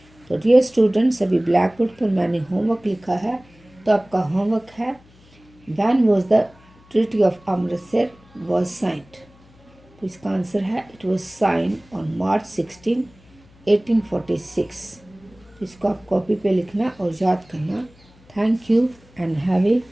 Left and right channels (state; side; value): noise; left; hum, 27 dB below the sound